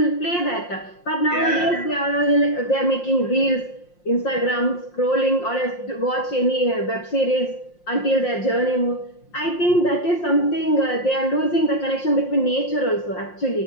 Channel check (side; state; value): right; late; 5.7 ms